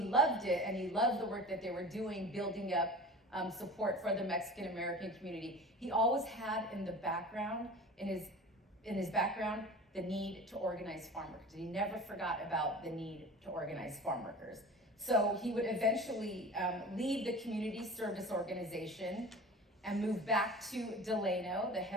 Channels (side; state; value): both; normal; correlation 0.37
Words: loved it, and he loved the work that they were doing, building up support for the Mexican American community, he always had in the background, in his background, the need to organize farm workers. He never forgot about the need to organize farm workers. So he would eventually leave the Community Service Organization and move back to Delano, a